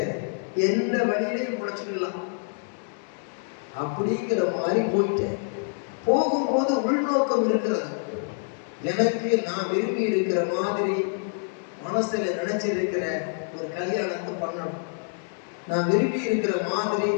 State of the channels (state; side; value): silent; right; 61 dB below the other